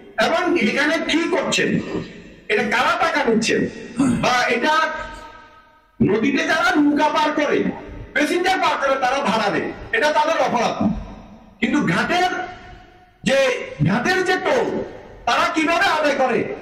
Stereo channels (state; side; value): identical; both; correlation 1.00